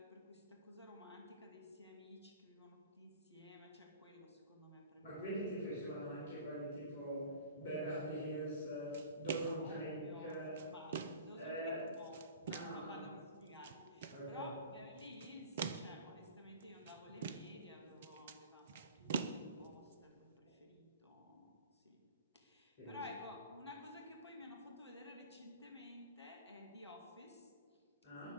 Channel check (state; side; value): inverted; both; correlation -0.41